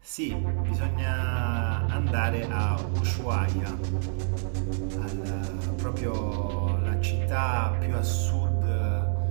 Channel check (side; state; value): left; silent; 60 dB below the other